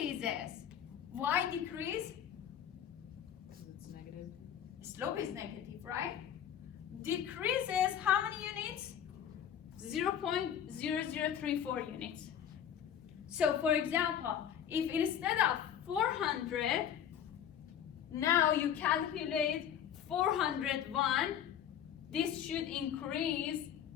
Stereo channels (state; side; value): quieter; right; 9.4 dB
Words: Why decrease? It's negative. Slope is negative, right? Decreases how many units? 0.0034 units. So for example, if instead of 400, now you calculate 401, this should increase